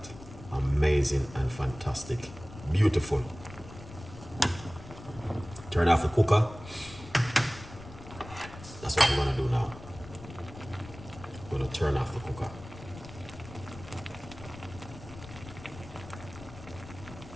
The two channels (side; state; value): left; noise; rumble, 15 dB below the sound